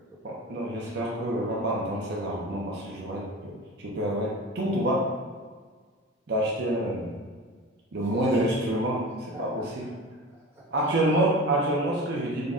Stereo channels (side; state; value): both; normal; correlation 0.33